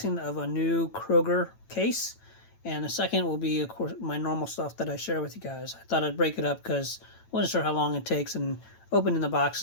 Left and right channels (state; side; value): late; right; 9.0 ms